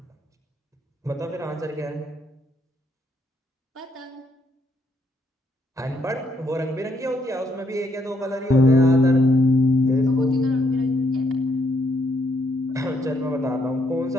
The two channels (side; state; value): both; normal; correlation 0.73